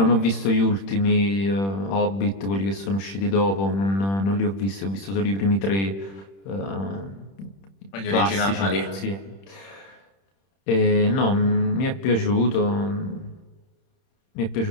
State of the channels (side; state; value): right; late; 31 ms